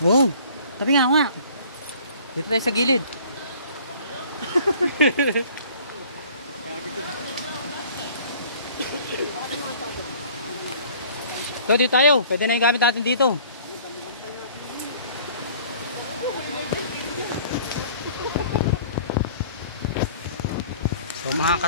Oo, sabi nga nga. Dito tayo sa gilid. So, dito tayo. Pwede na yung gamit natin dito. So mga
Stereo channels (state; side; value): inverted; both; correlation -0.51